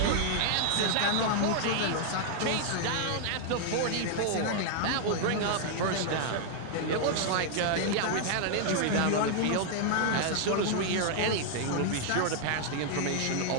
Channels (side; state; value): both; different; correlation 0.00